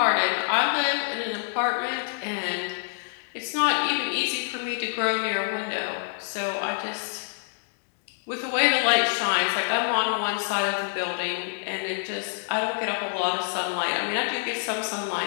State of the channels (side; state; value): right; silent; digital silence